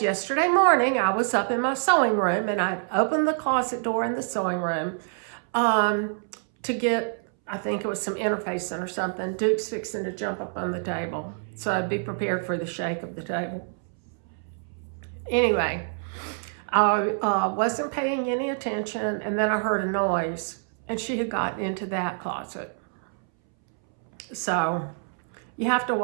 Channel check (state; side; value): silent; left; 61 dB below the other